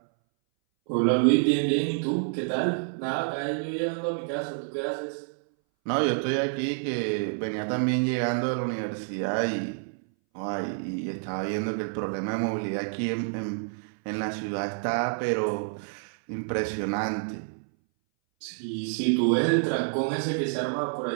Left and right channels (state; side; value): silent; left; 59 dB below the other